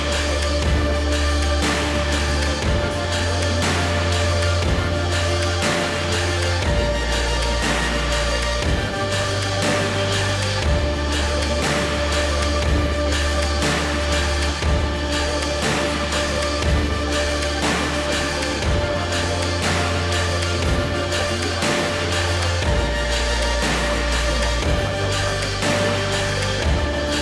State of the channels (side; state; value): both; identical; correlation 1.00